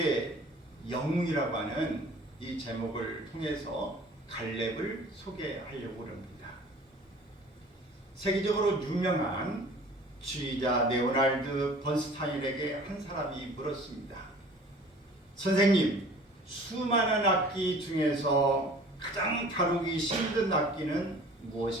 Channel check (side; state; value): both; normal; correlation 0.47